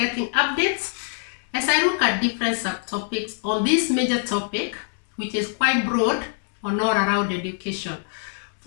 updates as I look at different subtopics on this major topic, which is quite broad on all around education.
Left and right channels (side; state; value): right; silent; 59 dB below the other